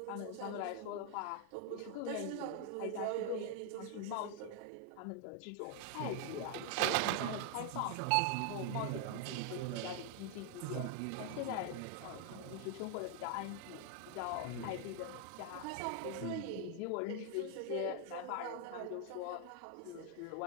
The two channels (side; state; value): both; different; correlation 0.00